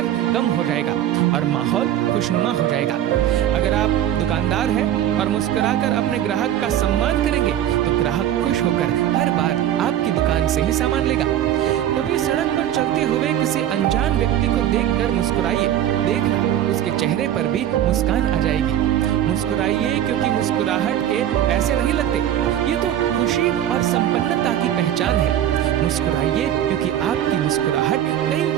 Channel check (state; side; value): quieter; left; 11.2 dB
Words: कम हो जाएगा और माहौल खुशनुमा हो जाएगा। अगर आप दुकानदार हैं और मुस्कुराकर अपने ग्राहक का सम्मान करेंगे तो ग्राहक खुश होकर हर बार आपकी दुकान से ही सामान लेगा। कभी सड़क पर चलते हुए किसी अनजान व्यक्ति को देखकर मुस्कुराइए, देखना उसके चेहरे पर भी मुस्कान आ जाएगी। मुस्कुराइए क्योंकि मुस्कुराहट के पैसे नहीं लगते, ये तो खुशी और संपन्नता की पहचान है। मुस्कुराइए क्योंकि आपकी मुस्कुराहट कई